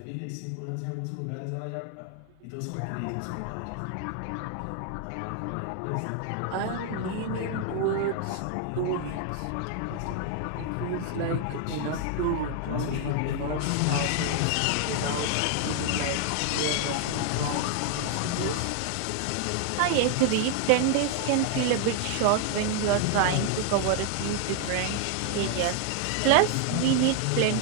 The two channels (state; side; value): different; both; correlation 0.00